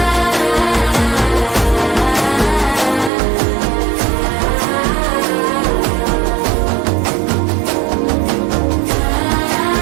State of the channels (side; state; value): left; drops out; at 3.1 s